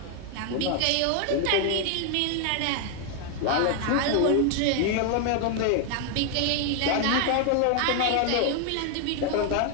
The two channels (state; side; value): different; both; correlation 0.00